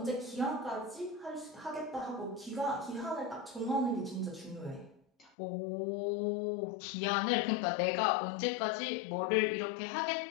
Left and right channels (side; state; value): right; drops out; at 5.3 s